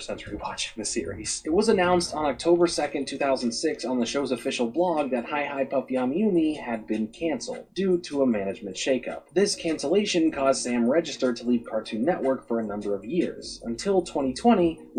rewatching the series. It was announced on October 2nd, 2006 on the show's official blog that Hi Hi Puffy Amiyumi had been cancelled due to a management shakeup. This cancellation caused Sam Register to leave Cartoon Network for a number of years, until 2020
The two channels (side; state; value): both; identical; correlation 1.00